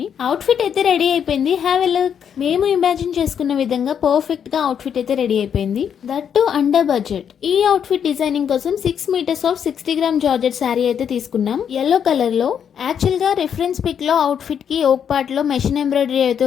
అవుట్ఫిట్ అయితే రెడీ అయిపోయింది. Have a look. మేము ఇమాజిన్ చేసుకున్న విధంగా పర్ఫెక్ట్ గా అవుట్ఫిట్ అయితే రెడీ అయిపోయింది, దట్ టు అండర్ బడ్జెట్. ఈ అవుట్ఫిట్ డిజైనింగ్ కోసం 6 meters of 60 gram georgette sari అయితే తీసుకున్నాం, ఎల్లో కలర్ లో. యాక్చువల్ గా రెఫరెన్స్ పిక్ లో అవుట్ఫిట్ కి ఓక్ పార్ట్ లో మెషిన్ ఎంబ్రాయిడరీ అయితే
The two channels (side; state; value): right; quieter; 8.1 dB